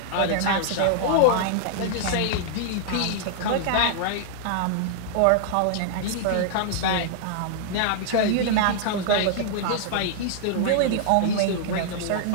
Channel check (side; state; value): both; different; correlation -0.01